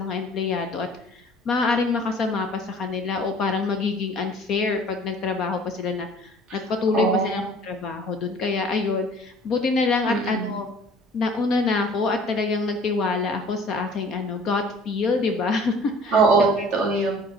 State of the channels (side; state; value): both; normal; correlation 0.50